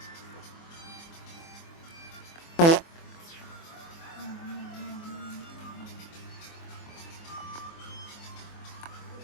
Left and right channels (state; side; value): late; right; 24 ms